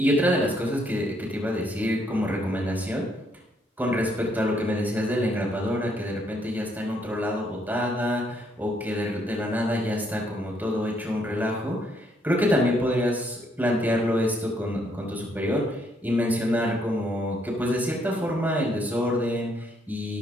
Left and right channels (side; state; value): both; normal; correlation 0.71